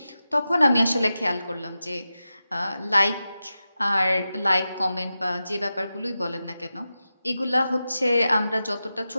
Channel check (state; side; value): inverted; both; correlation -0.92